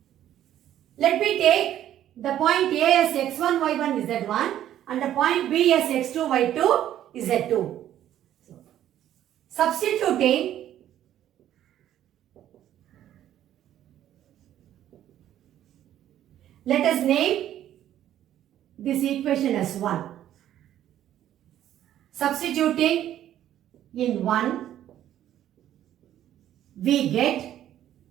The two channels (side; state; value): left; quieter; 11.7 dB